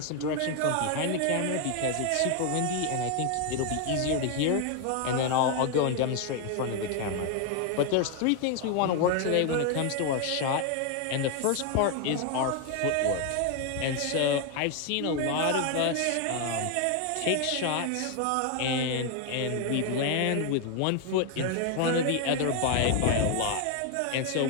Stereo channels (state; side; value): different; both; correlation 0.01